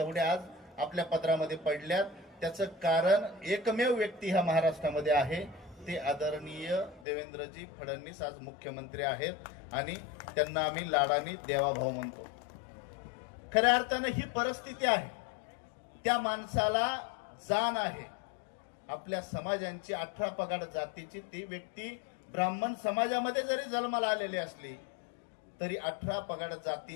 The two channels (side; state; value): right; drops out; at 7.1 s